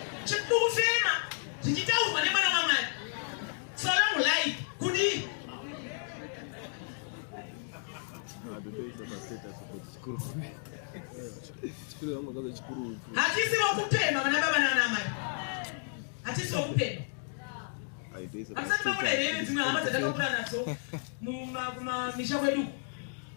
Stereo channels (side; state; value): right; silent; digital silence